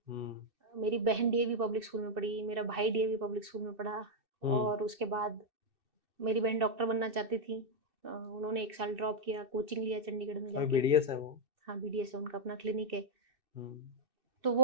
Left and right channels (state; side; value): late; left; 2.6 ms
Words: हुँ। मेरी बहन डीएवी पब्लिक स्कूल में पढ़ी, मेरा भाई डीएवी पब्लिक स्कूल में पढ़ा, हुँ। और उसके बाद मेरी बहन डॉक्टर बनना चाहती थी। उन्होंने 1 साल ड्रॉप किया, कोचिंग लिया चंडीगढ़ में अभी जाके। बीडीएस है वो? हाँ, बीडीएस है, उनका अपना क्लिनिक है। हुँ। तो